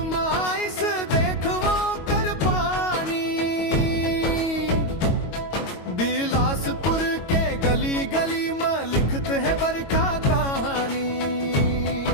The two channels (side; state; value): right; late; 22 ms